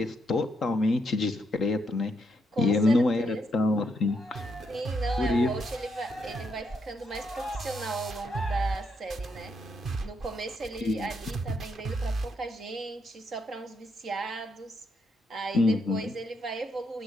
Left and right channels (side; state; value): both; normal; correlation 0.78